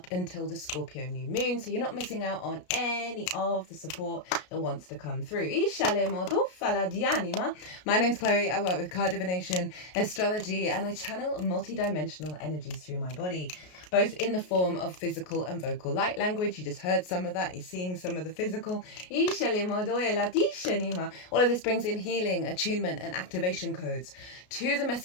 until the Scorpio new moon, so you're not missing out on any of the support that wants to come through. My name's Chloe. I work with card divination, astrology, and I channel multi-dimensional energies through my body, both in the form of physical and vocal light language. You just heard some of that. You're seeing some of the physical. All of this brings in healing, attunement, and activation codes to the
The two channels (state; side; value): late; right; 33 ms